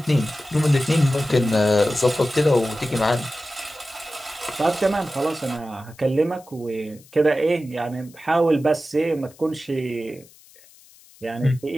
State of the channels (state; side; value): noise; left; hiss, 26 dB below the sound